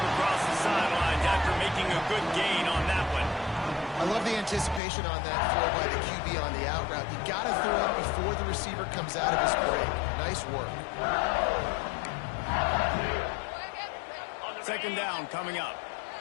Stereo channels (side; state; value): right; drops out; at 4.8 s